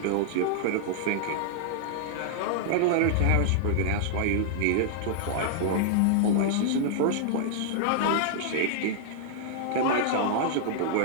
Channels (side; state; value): both; different; correlation -0.01